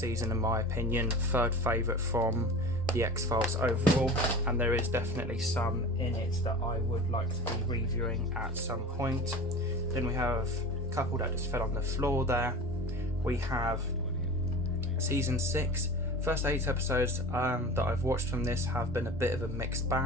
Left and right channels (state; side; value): normal; both; correlation 0.35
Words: in my opinion, 3rd favourite from the X-Files overall, and there is definitely some in it that I would like to be reviewing at some point. Then we have a couple that just fell on the floor there. we have season 6. First 8 episodes that I've watched from this have been a bit of a mixed